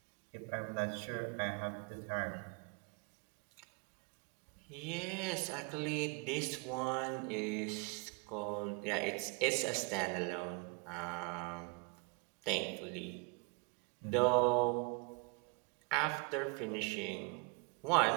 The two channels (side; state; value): left; quieter; 33.7 dB